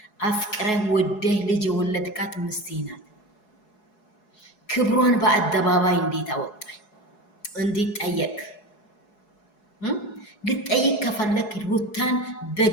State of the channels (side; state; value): right; late; 4.7 ms